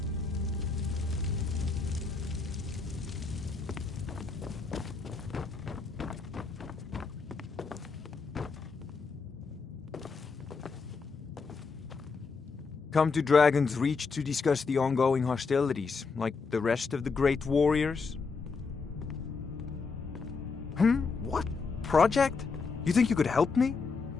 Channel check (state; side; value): quieter; right; 4.7 dB